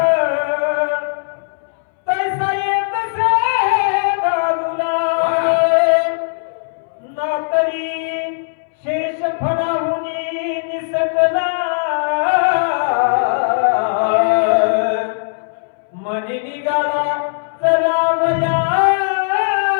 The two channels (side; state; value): right; silent; 65 dB below the other